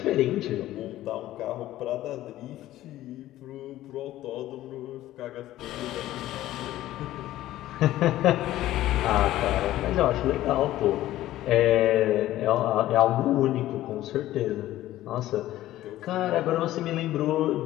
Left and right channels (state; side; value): quieter; right; 14.6 dB